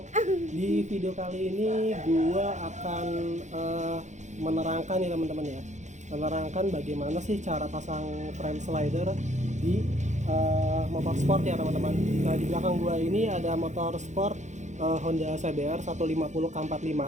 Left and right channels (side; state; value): left; late; 0.34 ms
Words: Di video kali ini gua akan menerangkan nih teman-teman ya. Menerangkan bagaimana sih cara pasang frame slider di motor sport ya teman-teman. Nah, di belakang gua ini ada motor sport Honda CBR 150